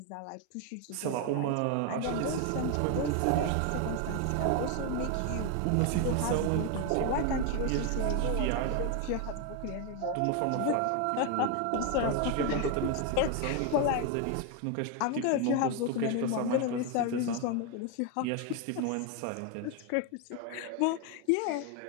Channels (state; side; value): different; both; correlation 0.01